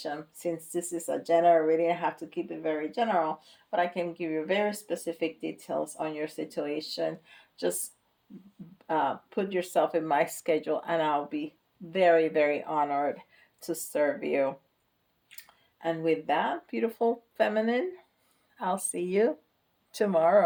since this is a general reading, I have to keep it very general, but I can give you very specific details on your situation. Just put yourself in my schedule, and I'll be very, very honored to serve you. And with that, beautiful feminine, I'll see you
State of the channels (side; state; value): both; identical; correlation 1.00